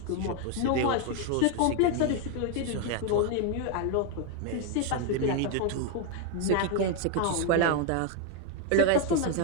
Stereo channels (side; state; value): both; different; correlation 0.01